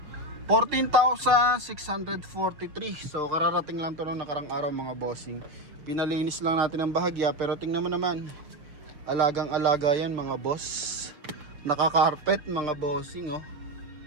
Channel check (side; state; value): left; late; 6.6 ms